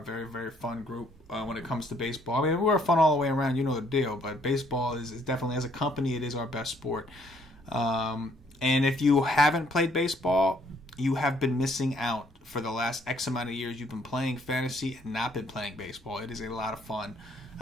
very, very fun group when it comes to baseball. I mean, we're fun all the way around. You know the deal. But baseball is definitely, as a company, it is our best sport. And if you haven't played baseball, you have been missing out for the last X amount of years. You've been playing fantasy and not been playing baseball. It is a lot of fun.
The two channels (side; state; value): both; normal; correlation 0.65